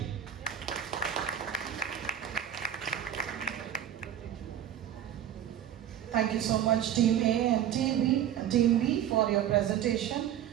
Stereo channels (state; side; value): quieter; left; 10.6 dB